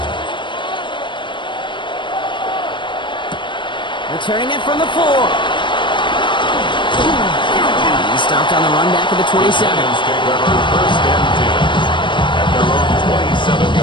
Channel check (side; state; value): right; late; 0.23 ms